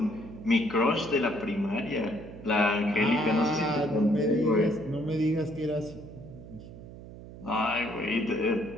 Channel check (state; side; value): noise; right; hum, 15 dB below the sound